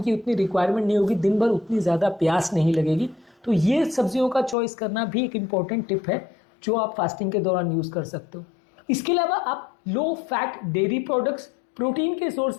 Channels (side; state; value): right; drops out; at 4.5 s